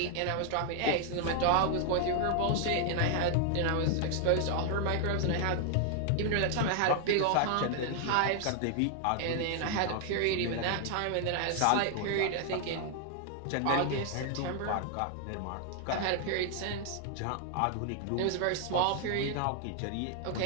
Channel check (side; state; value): both; different; correlation 0.00